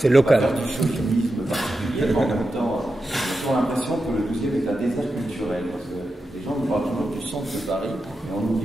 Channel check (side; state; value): both; normal; correlation 0.89